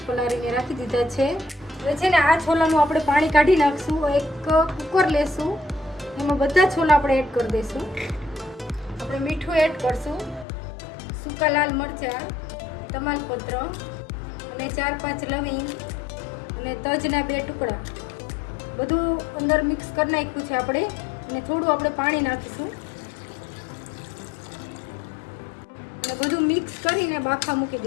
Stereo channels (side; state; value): right; drops out; at 10.5 s